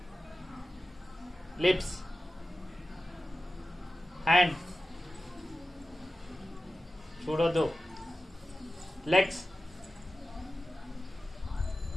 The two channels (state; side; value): normal; both; correlation 0.95